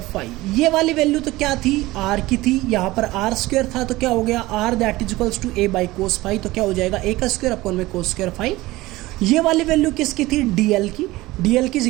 phi. ये वाली वैल्यू तो क्या थी, आर की थी, यहाँ पर आर स्क्वायर था, तो क्या हो गया R that is equals to A by cos phi, तो क्या हो जाएगा ए का स्क्वायर अपॉन में कोस स्क्वायर फाई। ये वाली वैल्यू किसकी थी, डीएल की, डीएल की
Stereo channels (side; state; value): left; quieter; 18.9 dB